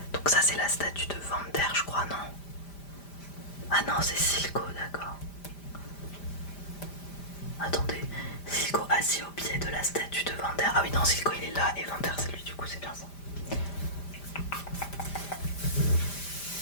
Donc ça c'est la statue de Vander, je crois, non? Ah non, c'est Silco, d'accord. Attendez, Silco assis au pied de la statue de Vander. Ah oui, non, Silco il est là et Vander c'est lui, du coup c'est bien ça.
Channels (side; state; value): right; late; 5.0 ms